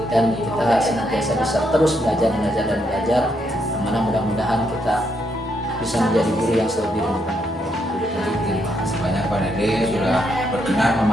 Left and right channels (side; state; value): both; normal; correlation 0.77